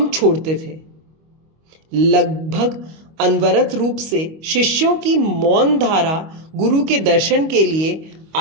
छोड़ते थे। लगभग अनवरत रूप से शिष्यों की मौन धारा गुरु के दर्शन के लिए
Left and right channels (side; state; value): left; late; 25 ms